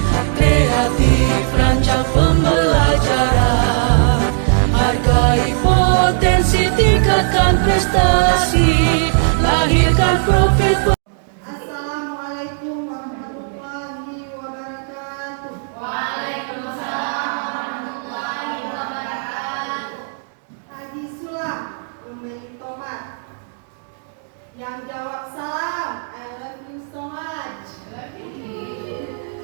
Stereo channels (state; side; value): silent; left; digital silence